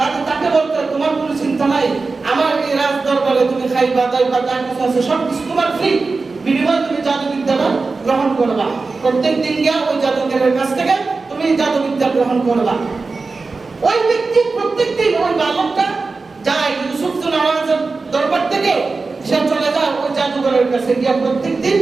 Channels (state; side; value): quieter; left; 4.0 dB